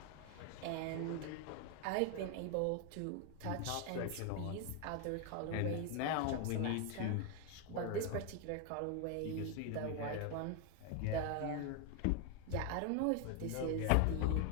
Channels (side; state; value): both; different; correlation 0.01